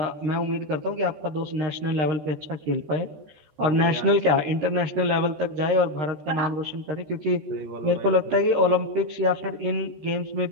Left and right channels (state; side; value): late; left; 13 ms